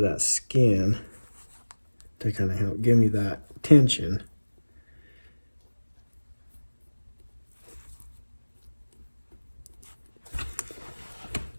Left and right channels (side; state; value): both; inverted; correlation -1.00